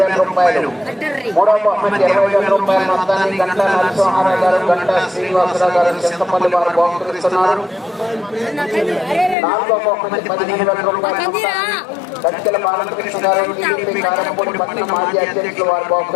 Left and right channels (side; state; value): right; drops out; at 9.3 s